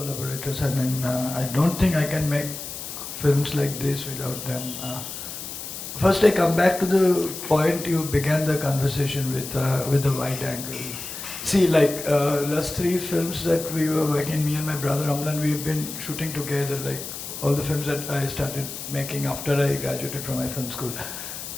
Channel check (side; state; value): left; noise; hiss, 9 dB below the sound